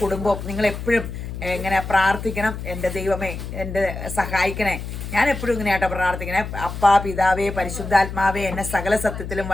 കുടുംബവും. നിങ്ങളെപ്പോഴും ഇങ്ങനെ പ്രാർത്ഥിക്കണം, എൻ്റെ ദൈവമേ എന്നെ സഹായിക്കണേ. ഞാൻ എപ്പോഴും ഇങ്ങനെയാട്ടോ പ്രാർത്ഥിക്കണേ. അപ്പാ, പിതാവേ, പരിശുദ്ധാത്മാവേ, എന്നെ സകല സത്യത്തിലും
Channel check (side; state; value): left; noise; hum, 8 dB below the sound